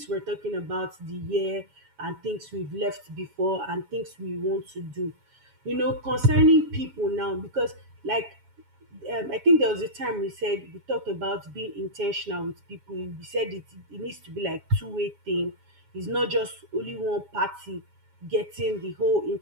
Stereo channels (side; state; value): left; late; 7.2 ms